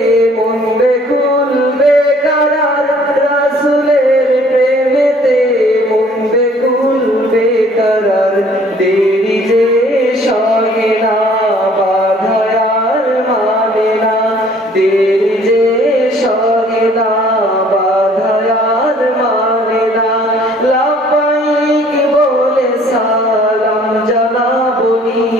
মন বেকুল বেকরার রাসূলের প্রেমেতে মন বেকুল বেকরার দেরি যে সহে না বাধায় আর মানে না দেরি যে সহে না বাধায় আর মানে না লাব্বাইক বলে সালাম জানাবো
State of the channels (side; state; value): both; normal; correlation 0.57